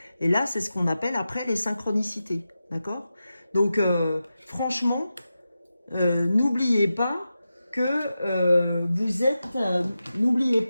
Et là, c'est ce qu'on appelle après les synchronicités. D'accord? Donc, franchement, n'oubliez pas que vous êtes... n'oubliez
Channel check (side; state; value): both; inverted; correlation -0.91